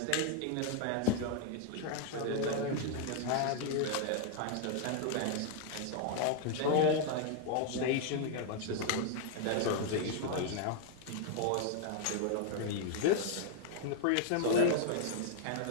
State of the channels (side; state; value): both; different; correlation 0.00